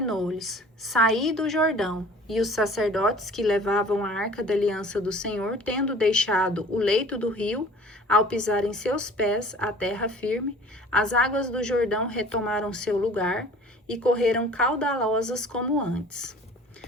saí do Jordão. E os sacerdotes que levavam a arca da aliança do Senhor, tendo deixado o leito do rio, ao pisar em seus pés a terra firme, as águas do Jordão retomaram seu lugar e correram caudalosas como antes.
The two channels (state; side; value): normal; both; correlation 0.47